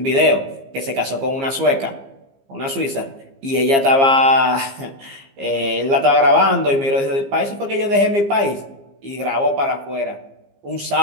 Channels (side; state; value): left; late; 15 ms